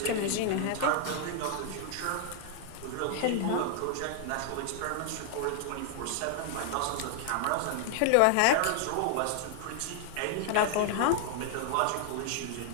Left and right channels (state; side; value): different; both; correlation 0.00